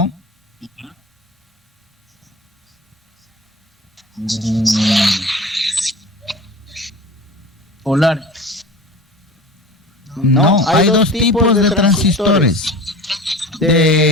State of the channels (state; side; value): normal; both; correlation 0.37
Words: Polar. No, hay dos tipos de transistores.